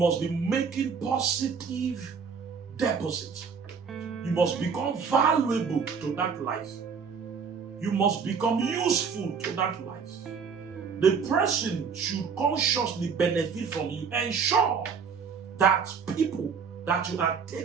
be making positive deposits. You must become valuable to that life. You must become useful to that life. The person should consciously benefit from you. Ensure that people that you are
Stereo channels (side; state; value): left; quieter; 6.0 dB